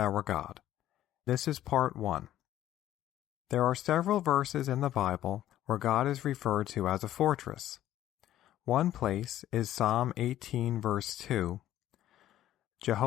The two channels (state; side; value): quieter; right; 12.8 dB